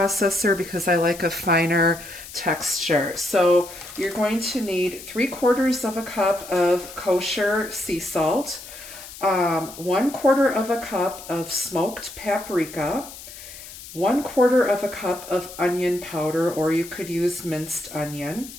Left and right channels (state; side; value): noise; left; hiss, 15 dB below the sound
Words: because I like a finer texture. So you're going to need 3/4 of a cup of kosher sea salt, 1/4 of a cup of smoked paprika, 1/4 of a cup of onion powder, or you could use minced onion.